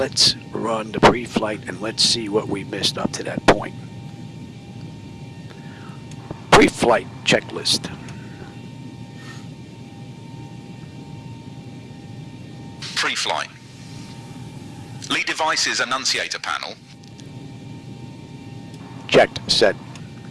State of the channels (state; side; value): identical; both; correlation 1.00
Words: run the pre-flight and let's see what we missed up to that point. Pre-flight checklist. Pre-flight. Lead devices annunciator panel. Checked. Set.